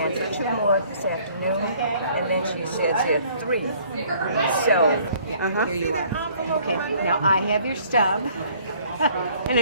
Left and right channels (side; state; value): both; inverted; correlation -0.58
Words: for 2 more this afternoon, and then she says there are 3. So, Here you are. Okay, now I have your stub, and